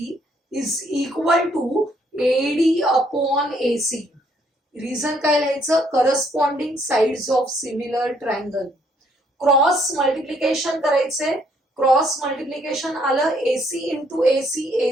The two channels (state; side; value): normal; both; correlation 0.68